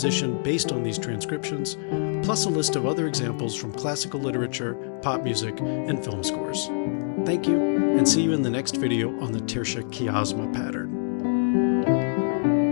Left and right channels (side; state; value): right; silent; digital silence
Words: based on these transcriptions, plus a list of other examples from classical literature, pop music, and film scores. Thank you, and see you in the next video on the Tertia Quiescenza pattern.